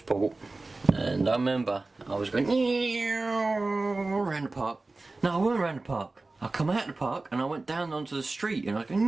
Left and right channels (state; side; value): quieter; left; 3.3 dB